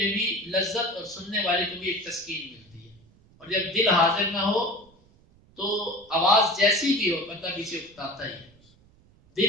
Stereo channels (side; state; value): right; noise; rumble, 29 dB below the sound